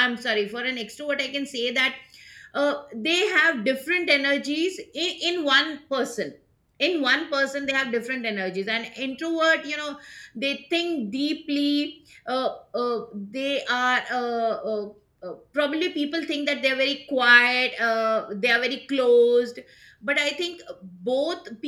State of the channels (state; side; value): identical; both; correlation 1.00